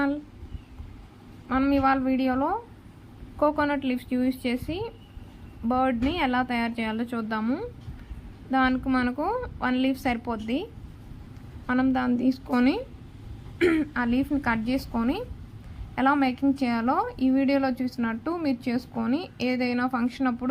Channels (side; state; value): both; identical; correlation 1.00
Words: మనం ఇవాళ వీడియోలో కోకోనట్ లీవ్స్ యూజ్ చేసి బర్డ్ని ఎలా తయారు చేయాలో చూద్దాము. దానికి మనకు 1 లీఫ్ సరిపోద్ది. మనం దాన్ని తీసుకొని ఆ లీఫ్ని కట్ చేసుకొని ఎలా మేకింగ్ చేయాలో ఈ వీడియోలో చూసినట్టు మీరు చేసుకొని ఏదైనా ఫంక్షన్